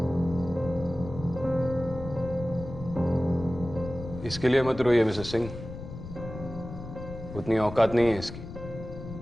इसके लिए मत रोइए मिसेस सिंह, उतनी औकात नहीं है इसकी।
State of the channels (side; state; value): left; noise; rumble, 11 dB below the sound